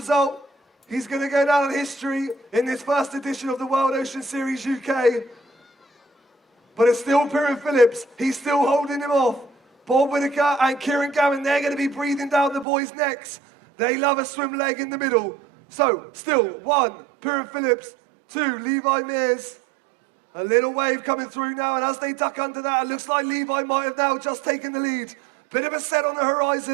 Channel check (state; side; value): drops out; left; at 12.7 s